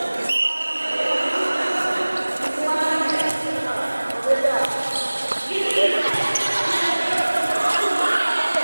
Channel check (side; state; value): both; inverted; correlation -1.00